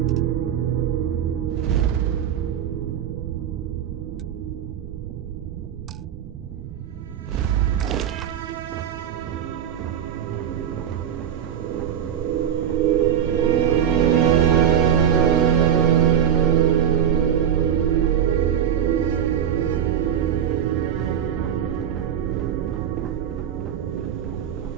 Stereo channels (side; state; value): left; quieter; 9.2 dB